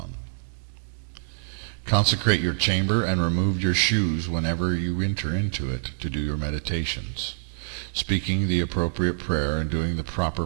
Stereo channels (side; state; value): left; silent; 61 dB below the other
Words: Consecrate your chamber and remove your shoes whenever you enter into it to do your meditations, speaking the appropriate prayer and doing the proper